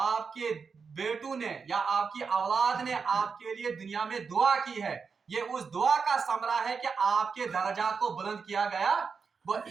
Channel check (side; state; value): left; quieter; 5.4 dB